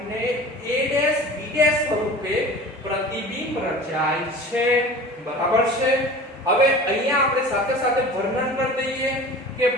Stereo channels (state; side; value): normal; both; correlation 0.39